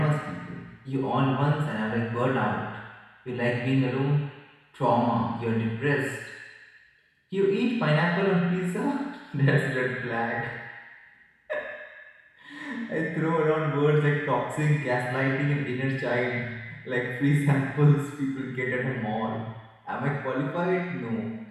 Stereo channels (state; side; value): identical; both; correlation 1.00